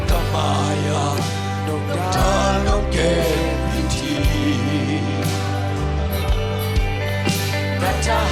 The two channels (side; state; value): both; identical; correlation 1.00